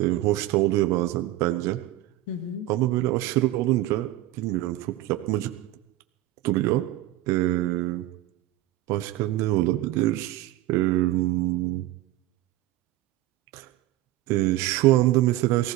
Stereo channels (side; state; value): left; quieter; 15.2 dB